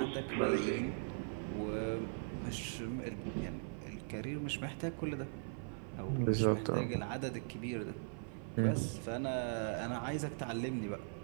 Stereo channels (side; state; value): left; silent; 51 dB below the other